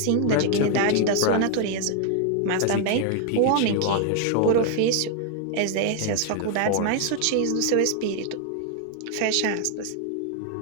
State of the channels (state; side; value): different; both; correlation 0.00